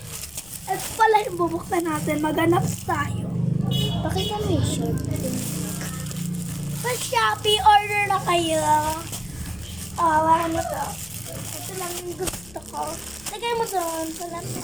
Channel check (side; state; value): left; noise; rumble, 23 dB below the sound